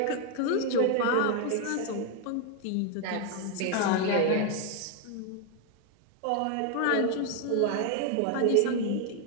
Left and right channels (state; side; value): different; both; correlation 0.01